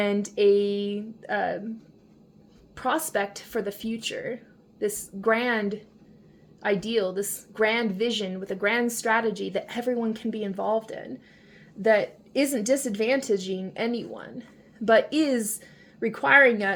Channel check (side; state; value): both; identical; correlation 1.00